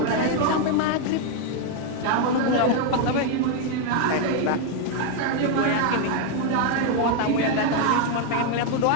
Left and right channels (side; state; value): both; different; correlation 0.01